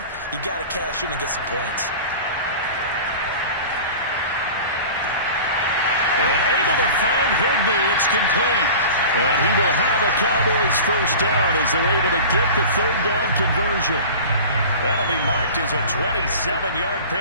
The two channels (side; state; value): both; inverted; correlation -0.37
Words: You got to cash in and get some points. And able to find Higbee. It's complete. And he will have a Cowboys first down as they're able to get the 3rd down conversion. That'll be marked as a 27-yard